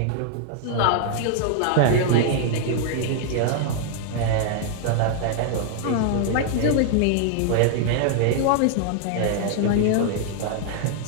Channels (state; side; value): different; both; correlation -0.01